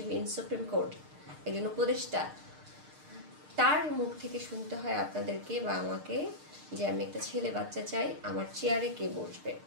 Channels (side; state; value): left; late; 6.6 ms